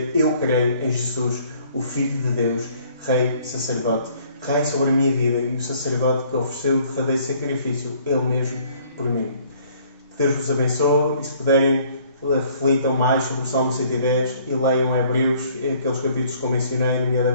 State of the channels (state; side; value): inverted; both; correlation -0.60